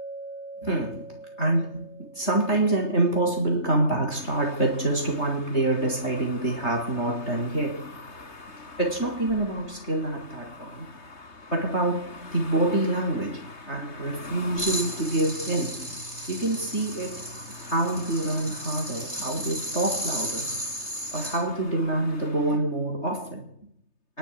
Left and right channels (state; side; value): late; right; 3.3 ms